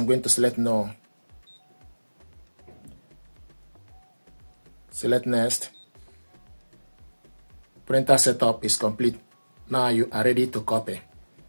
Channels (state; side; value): inverted; both; correlation -1.00